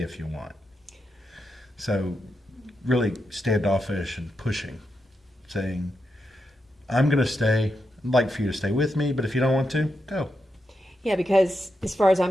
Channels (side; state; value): both; normal; correlation 0.85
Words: you want. So, really standoffish and pushing, saying, I'm going to stay. I'd like for you to stay with me, but if you don't want to, go. Yeah, because as far as